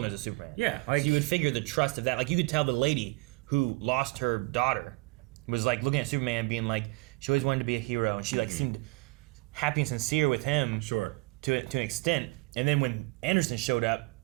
knows of Superman. Yeah, like, so you would figure the trust of that. Like you could tell the lady who lost her daughter was like looking at Superman, being like, she always wanted to be a hero, and she like seemed happy and sincere with him. Sure. To an extent, and then when Anderson showed up,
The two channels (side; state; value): left; quieter; 25.2 dB